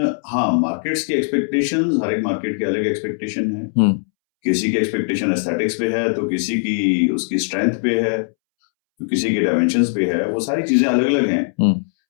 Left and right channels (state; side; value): silent; right; 66 dB below the other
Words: हाँ मार्केट्स की एक्सपेक्टेशंस, हर एक मार्केट की अलग एक्सपेक्टेशन है। किसी की एक्सपेक्टेशन एस्थेटिक्स पे है, तो किसी की उसकी स्ट्रेंथ पे है, तो किसी के डायमेंशंस पे है, वो सारी चीजें अलग अलग हैं।